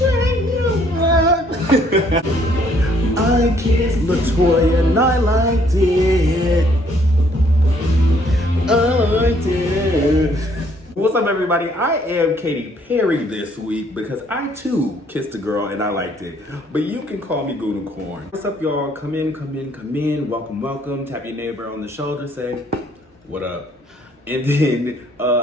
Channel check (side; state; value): both; normal; correlation 0.65